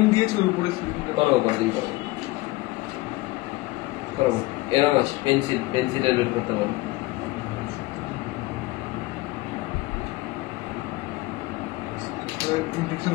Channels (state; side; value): quieter; right; 20.4 dB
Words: দিয়েছে ওর উপরে করাবো পরের দিন, করাবো। এরকম আছে, পেন্সিলের বের করতে পারবো। ইনফেকশন